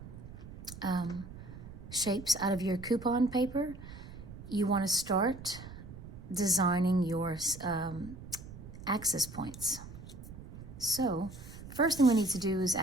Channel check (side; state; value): right; noise; rumble, 14 dB below the sound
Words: shapes out of your coupon paper, you want to start designing your axis points. So first thing we need to do is